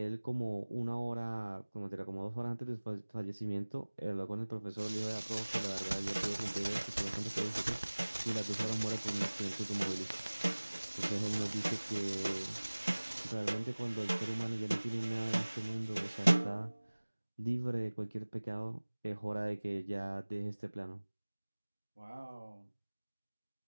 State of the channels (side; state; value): both; inverted; correlation -1.00